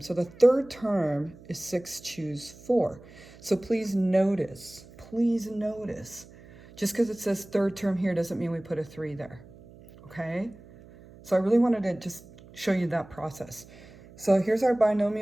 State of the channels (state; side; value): noise; right; hum, 21 dB below the sound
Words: the third term is 6 choose 4. So please notice, just because it says third term here doesn't mean we put a 3 there, okay? So I really wanted to just show you that process. So here's our